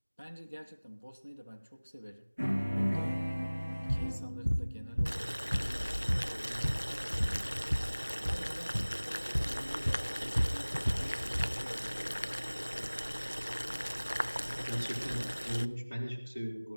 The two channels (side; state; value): both; inverted; correlation -1.00